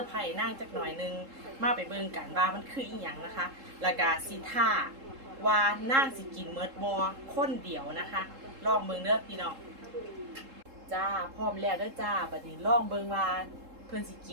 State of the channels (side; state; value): left; late; 3.7 ms